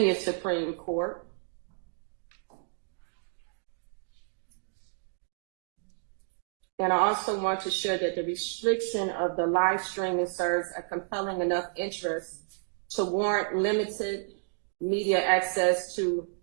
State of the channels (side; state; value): left; silent; digital silence